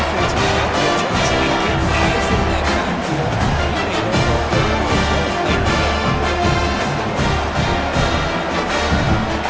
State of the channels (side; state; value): both; identical; correlation 1.00